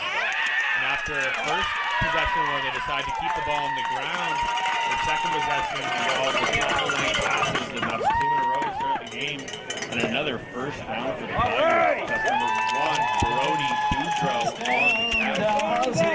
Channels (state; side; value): identical; both; correlation 1.00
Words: after first possession where they decide to keep the ball on the ground, the second possession involves a couple of late passes, and that's 2 in a row to start the game. And another first down for the Tigers. That's number 1, Brody Boudreau on the catch.